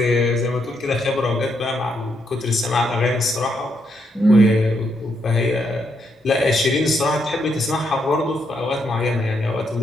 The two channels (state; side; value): normal; both; correlation 0.78